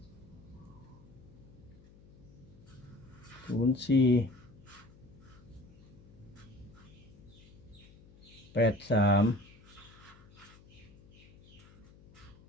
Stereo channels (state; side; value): noise; left; hum, 23 dB below the sound